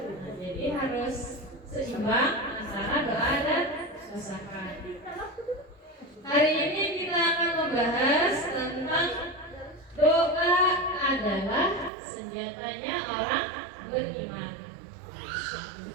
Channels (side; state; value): left; drops out; at 11.9 s